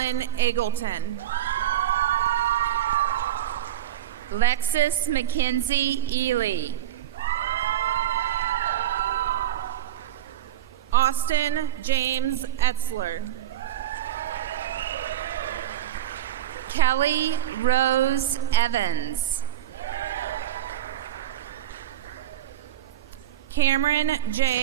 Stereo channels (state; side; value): quieter; left; 11.3 dB